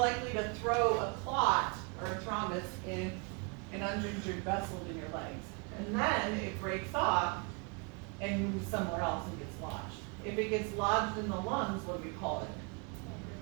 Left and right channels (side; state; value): left; quieter; 33.8 dB